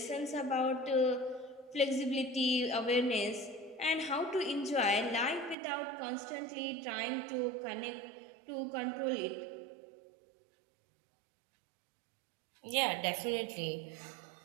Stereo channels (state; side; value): drops out; left; at 5.6 s